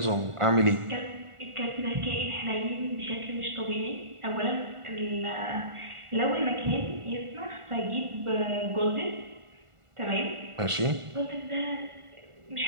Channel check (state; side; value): late; left; 1.5 ms